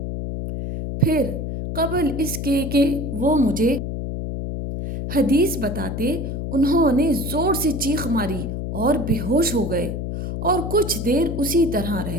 پھر قبل اس کے کہ وہ مجھے حدیث بتاتے انہوں نے زور سے چیخ ماری اور بے ہوش ہو گئے اور کچھ دیر اسی طرح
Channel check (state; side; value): noise; left; hum, 4 dB below the sound